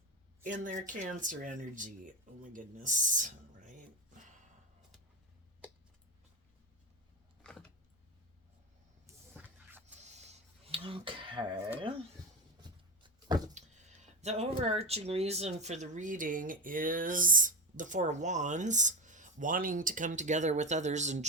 in their Cancer energy. Oh my goodness. Okay. The overarching reason for the reading is the Four of Wands, wanting to come together with others in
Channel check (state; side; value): normal; both; correlation 0.16